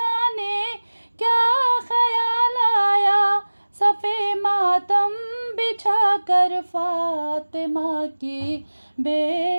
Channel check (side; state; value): both; inverted; correlation -1.00